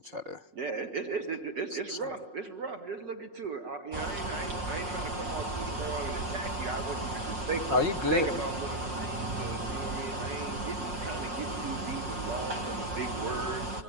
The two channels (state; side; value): late; left; 6.1 ms